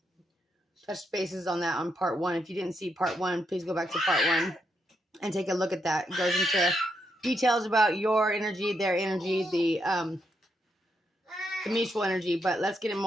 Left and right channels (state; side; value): normal; both; correlation 0.80